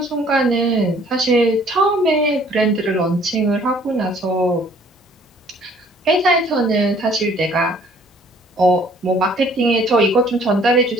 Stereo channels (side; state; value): both; normal; correlation 0.58